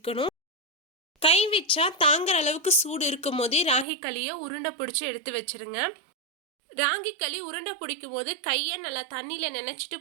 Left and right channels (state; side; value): drops out; left; at 3.9 s